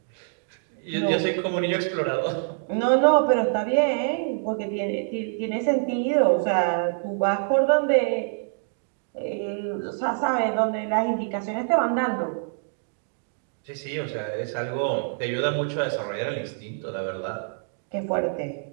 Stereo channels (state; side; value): silent; left; digital silence